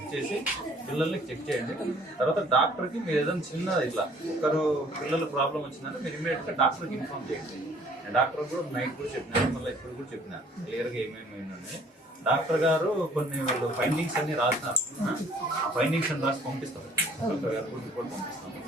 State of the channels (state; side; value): normal; both; correlation 0.57